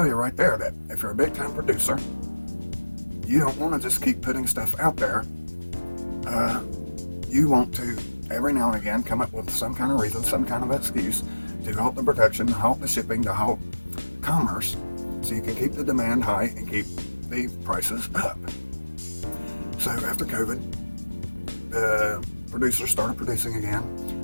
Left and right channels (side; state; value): both; inverted; correlation -1.00